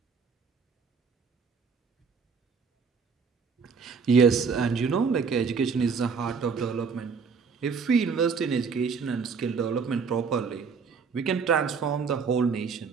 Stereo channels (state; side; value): quieter; left; 5.5 dB